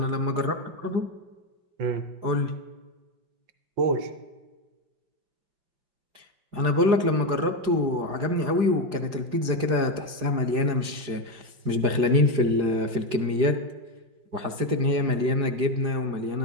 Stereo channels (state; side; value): late; left; 5.0 ms